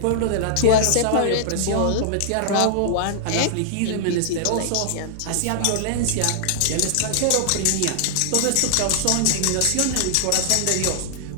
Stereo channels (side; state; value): both; different; correlation -0.01